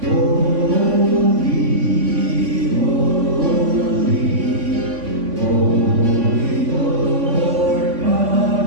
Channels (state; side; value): late; left; 3.5 ms